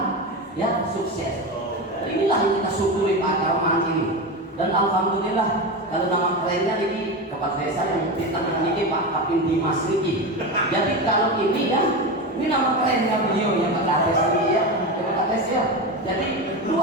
ya sukses. Inilah yang kita syukuri Pak Akarman ini. Dan alhamdulillah kalau nama kerennya ini Kepala Desa yang ditandai Pak Kapin Dimas Riki. Jadi kalau ini ya, ini nama kerennya beliau yang Kepala Desa ini ya, Kepala Desa ya. Jadi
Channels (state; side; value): normal; both; correlation 0.20